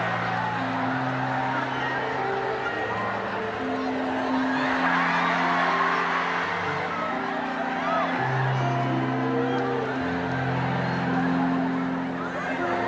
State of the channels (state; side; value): identical; both; correlation 1.00